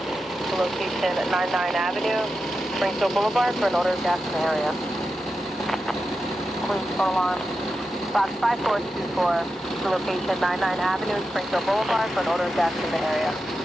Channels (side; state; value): both; normal; correlation 0.90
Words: the location at 99 Avenue, Springfield Boulevard for an odor of gas in the area. Please phone alarm box 5424, the location at 99 Avenue, Springfield Boulevard for an odor of gas in the area.